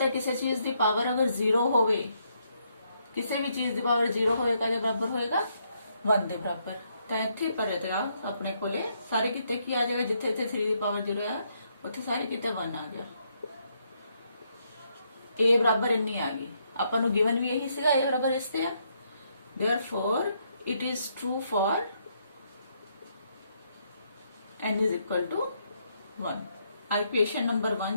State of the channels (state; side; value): inverted; both; correlation -0.75